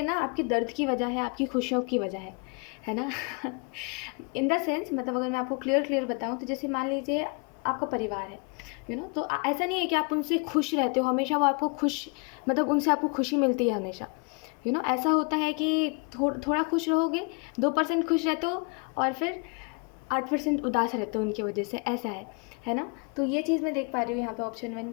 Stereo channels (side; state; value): right; quieter; 33.9 dB